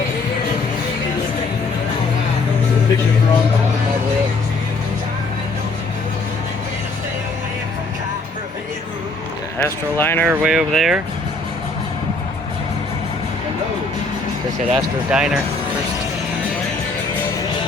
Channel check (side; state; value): right; quieter; 3.2 dB